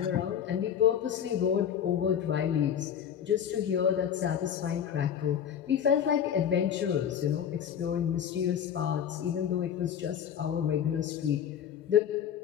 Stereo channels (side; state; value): right; quieter; 8.9 dB